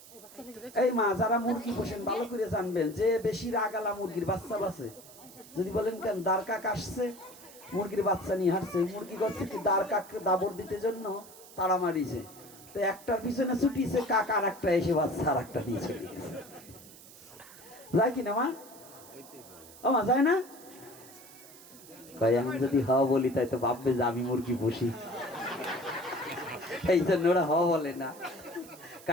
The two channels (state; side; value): noise; right; hiss, 19 dB below the sound